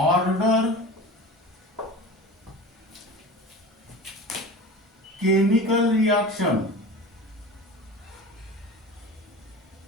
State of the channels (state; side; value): normal; both; correlation 0.34